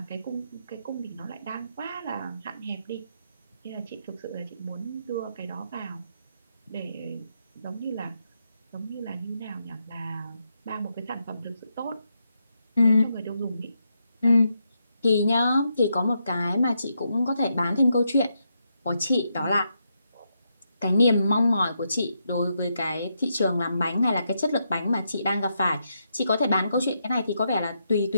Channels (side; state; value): both; inverted; correlation -0.81